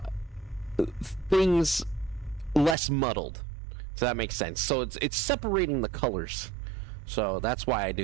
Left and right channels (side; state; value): left; drops out; at 2.8 s